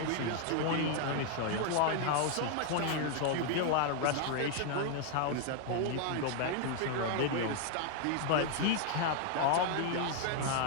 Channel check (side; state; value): both; different; correlation 0.00